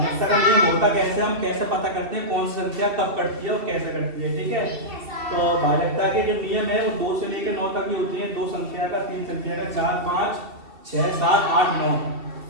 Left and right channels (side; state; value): left; late; 2.7 ms